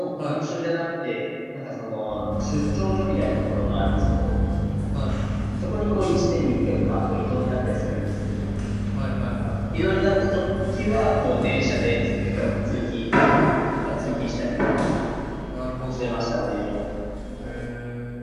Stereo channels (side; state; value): both; identical; correlation 1.00